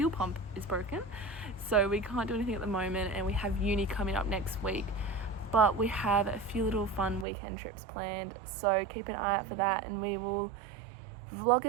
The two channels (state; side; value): drops out; left; at 7.2 s